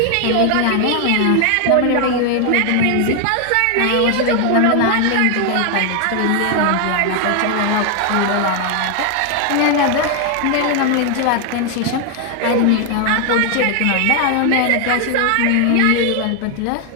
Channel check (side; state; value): both; different; correlation 0.01